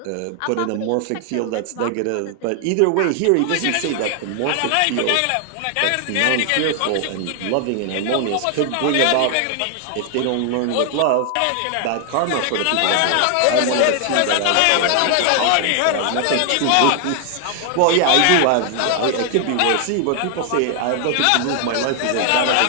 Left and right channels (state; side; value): different; both; correlation 0.00